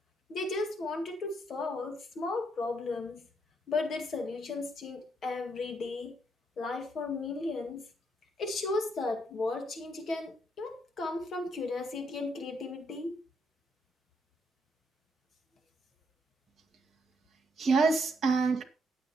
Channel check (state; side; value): normal; both; correlation 0.74